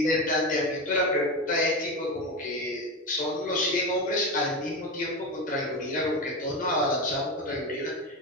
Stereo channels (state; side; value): normal; both; correlation 0.20